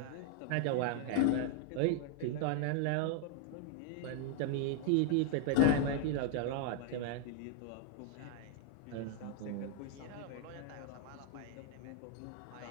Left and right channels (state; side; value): different; both; correlation 0.00